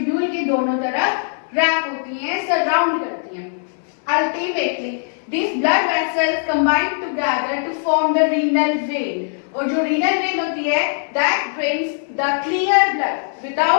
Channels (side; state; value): right; silent; 66 dB below the other